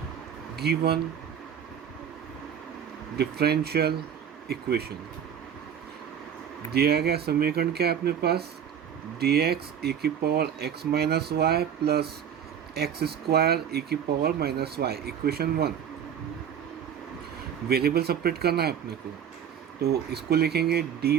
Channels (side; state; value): left; quieter; 8.5 dB